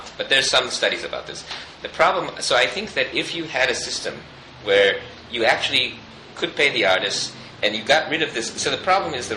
But there's some studies about this. The problem, so I think that if you had a system where you actually could pay the artists, and you got rid of this, so the problem is the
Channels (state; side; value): identical; both; correlation 1.00